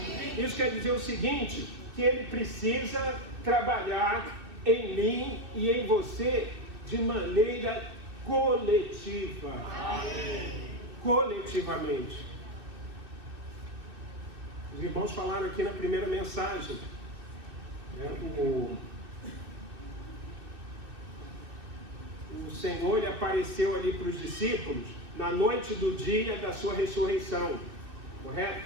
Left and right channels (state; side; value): late; left; 2.6 ms